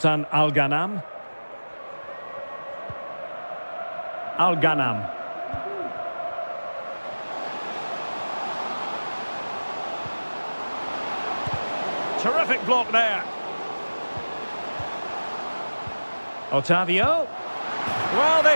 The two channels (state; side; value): inverted; both; correlation -1.00